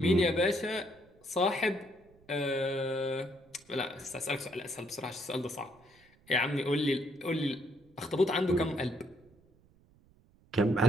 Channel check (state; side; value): noise; right; rumble, 29 dB below the sound